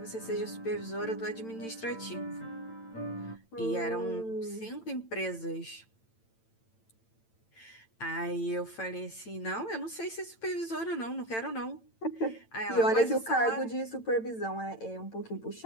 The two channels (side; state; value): right; late; 8.9 ms